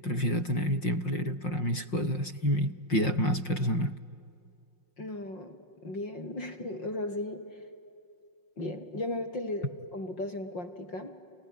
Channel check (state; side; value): late; right; 5.6 ms